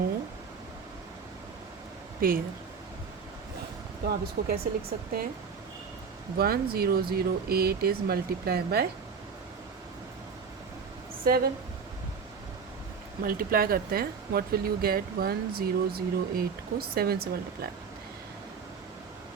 pair. तो आप इसको कैसे लिख सकते हैं? 1008 is multiplied by 7. मल्टीप्लाई करते हैं. What will you gate? 1008 को 7 से मल्टीप्लाई.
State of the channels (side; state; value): left; quieter; 5.8 dB